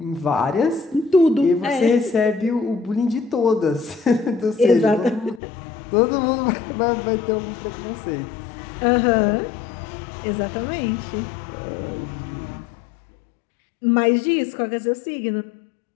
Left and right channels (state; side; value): drops out; right; at 5.4 s